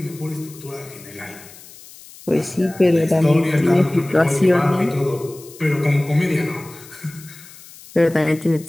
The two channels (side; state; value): left; noise; hiss, 20 dB below the sound